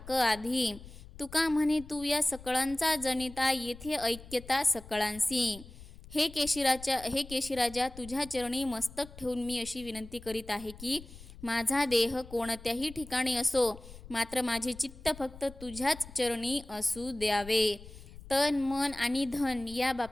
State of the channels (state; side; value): noise; left; rumble, 17 dB below the sound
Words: आधी। तुका म्हणे तू या सकळांचा जनिता, येथे ऐक्यता सकळांसी। हे केशीराजा तुझ्या चरणी मस्तक ठेवून मी अशी विनंती करीत आहे की माझा देह कोणत्याही ठिकाणी असो, मात्र माझे चित्त फक्त तुझ्याच चरणी असू द्यावे। तन मन आणि धन या